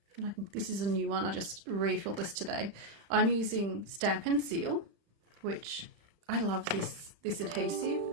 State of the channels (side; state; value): left; late; 35 ms